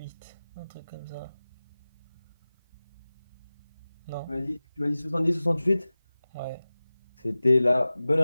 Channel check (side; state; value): both; inverted; correlation -0.97